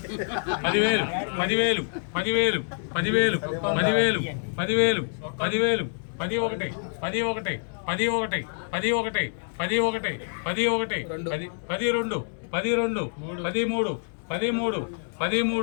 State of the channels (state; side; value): silent; right; digital silence